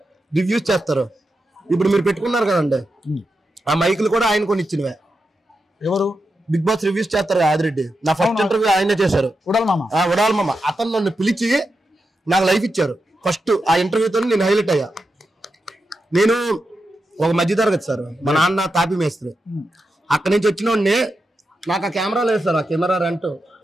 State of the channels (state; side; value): normal; both; correlation 0.88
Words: రివ్యూస్ చేస్తారు. ఇప్పుడు మీరు పెట్టుకున్నారు కదండి, ఆ మైకులు కూడా ఆయన కొని ఇచ్చినవే. ఎవరు? బిగ్ బాస్ రివ్యూస్ చేస్తారు ఆదిరెడ్డి. నా ఫస్ట్ ఇంటర్వ్యూ ఆయనే చేశారు, ఉడాలి మామ. అతను నన్ను పిలిచి నాకు లైఫ్ ఇచ్చారు. ఫస్ట్ ఆ ఇంటర్వ్యూతో నేను హైలైట్ అయ్యా. నేను ఒక మధ్య తరగతి సార్, మా నాన్న తాపి మేస్త్రి. అక్కడి నుంచి వచ్చిన వాడిని నాకు ఆ కెమెరా లేదు సార్, ఆ కెమెరా రెంట్,